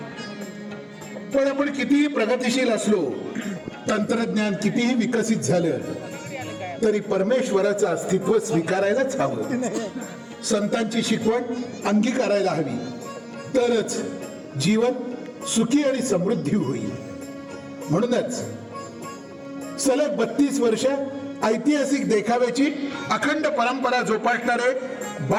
पण आपण कितीही प्रगतिशील असलो, तंत्रज्ञान कितीही विकसित झालं, तरी परमेश्वराचं अस्तित्व स्वीकारायलाच हवं. संतांची शिकवण अंगीकारायला हवी, तरच जीवन सुखी आणि समृद्धी होईल. म्हणूनच सलग 32 वर्ष ऐतिहासिक देखाव्याची अखंड परंपरा जोपासणारे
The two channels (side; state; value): both; identical; correlation 1.00